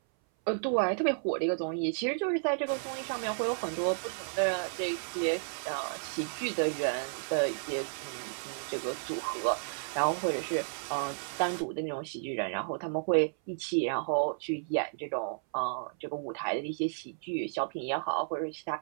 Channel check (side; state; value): left; silent; 56 dB below the other